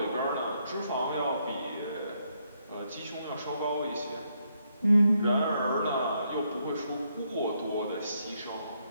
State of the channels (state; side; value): inverted; both; correlation -0.76